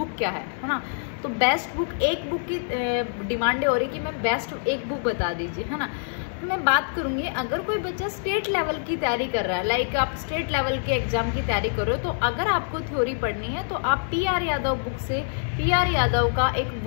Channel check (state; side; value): silent; right; digital silence